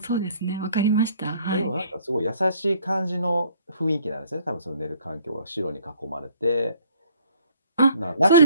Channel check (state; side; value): inverted; both; correlation -0.59